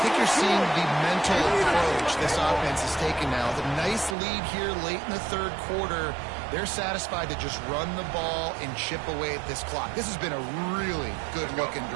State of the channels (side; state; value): left; drops out; at 4.2 s